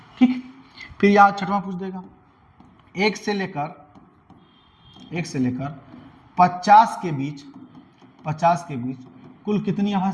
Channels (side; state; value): both; identical; correlation 1.00